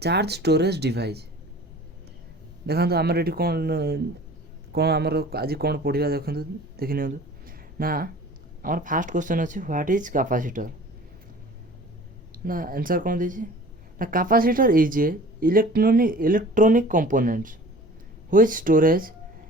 charge storage device. देखो आमर ये कौन कौन आमर आज कौन पढ़ा देखो देखी नि ना। आमर फास्ट क्वेश्चन अच्छे व्हाट इज कैपेसिटर ना। आंसर कौन दीजिए ना। Capacitor is a electronic components which storage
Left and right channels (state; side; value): normal; both; correlation 0.45